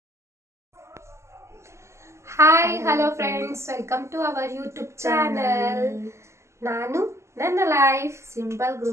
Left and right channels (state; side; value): late; left; 0.13 ms